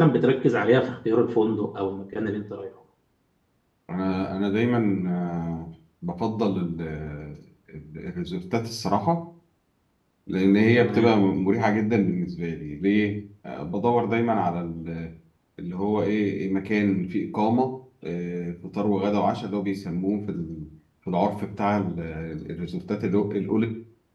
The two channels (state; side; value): identical; both; correlation 1.00